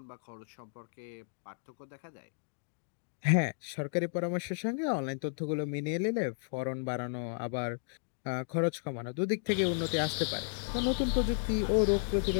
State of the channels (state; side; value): silent; right; digital silence